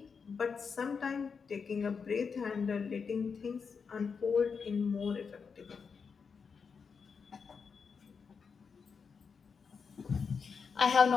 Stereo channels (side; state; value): right; quieter; 5.7 dB